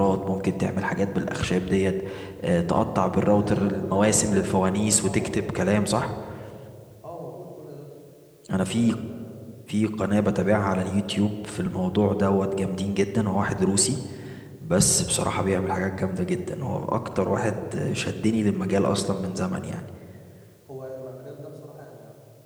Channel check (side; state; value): both; identical; correlation 1.00